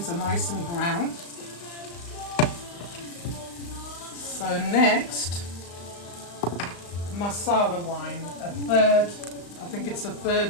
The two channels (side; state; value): right; late; 35 ms